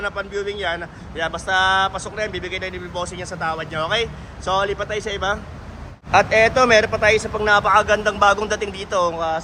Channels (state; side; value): identical; both; correlation 1.00